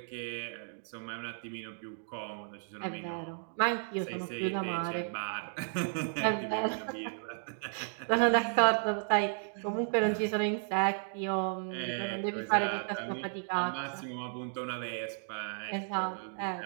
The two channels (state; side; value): silent; left; 55 dB below the other